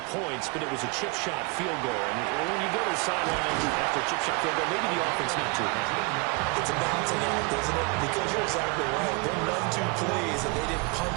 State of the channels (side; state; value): left; quieter; 29.3 dB